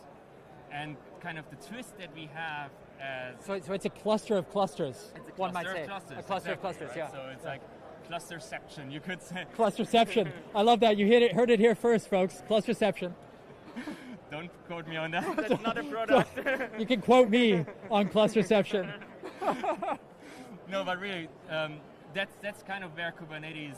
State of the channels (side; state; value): both; identical; correlation 1.00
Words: And kind of the twist that we have as... So it's a cluster of clusters, it's a one might cluster say. of clusters, A cluster exactly, of clusters, right? yeah. So it's like clusterception, you could say. Clusterception. I love that. You heard it here first, folks. Clusterception. Don't quote me on that. That's not a product. You can quote me on clusterception. No, but really, that's kind of where